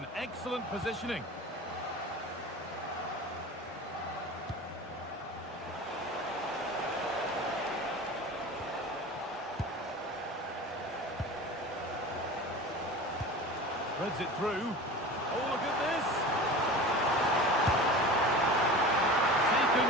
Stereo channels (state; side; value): normal; both; correlation 0.35